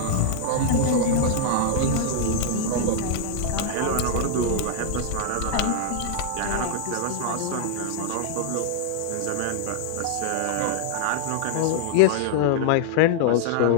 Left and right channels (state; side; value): different; both; correlation -0.01